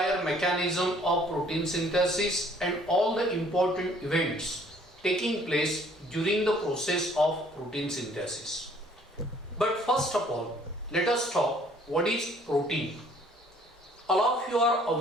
mechanism of protein synthesis and all the important events taking place during the process of protein synthesis. But first of all, let us talk what is protein. All of you are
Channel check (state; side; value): normal; both; correlation 0.59